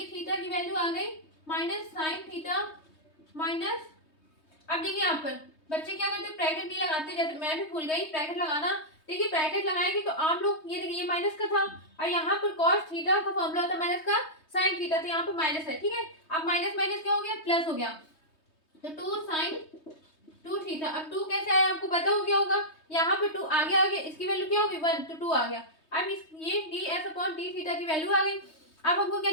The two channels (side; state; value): right; late; 3.2 ms